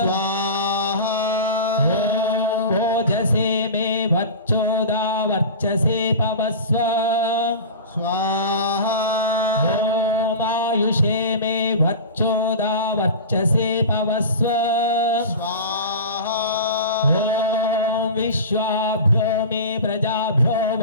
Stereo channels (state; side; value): inverted; both; correlation -0.31